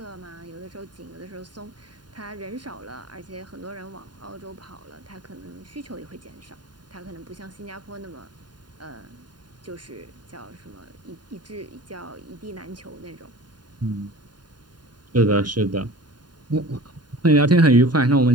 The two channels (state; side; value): late; left; 0.70 ms